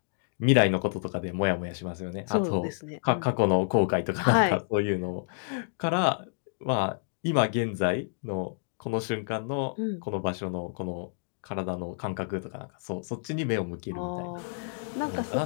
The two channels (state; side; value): silent; right; digital silence